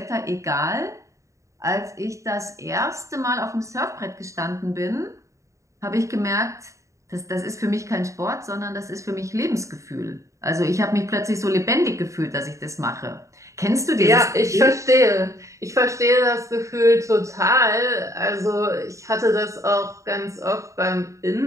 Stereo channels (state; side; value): late; left; 0.15 ms